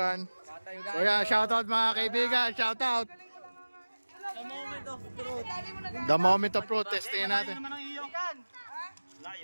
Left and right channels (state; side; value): inverted; both; correlation -1.00